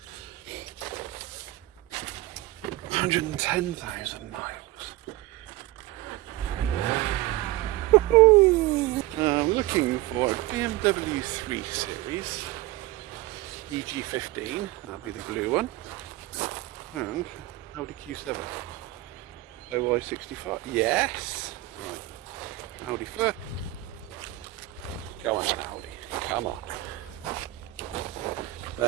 110,000 miles. I'm looking for a BMW 3 Series EG15, that'll be the blue one, and Audi Q7 OY65. Yes! Right, Audi first. Come on, Audi, come on.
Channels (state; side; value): quieter; left; 17.8 dB